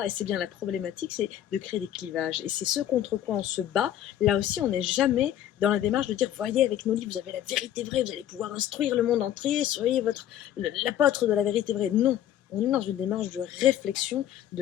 et c'est bien la problématique, c'est de créer des clivages. Et c'est ce contre quoi on se bat. Là aussi, on n'est jamais dans la démarche de dire, voyez, avec nos livres, vous avez la vérité vraie, vous allez pouvoir instruire le monde entier, soyez l'apôtre de la vérité vraie. Non. On est dans une démarche de réflexion,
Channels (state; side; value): quieter; right; 11.4 dB